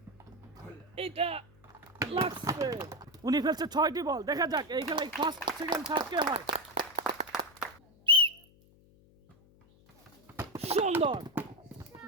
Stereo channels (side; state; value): left; noise; hum, 28 dB below the sound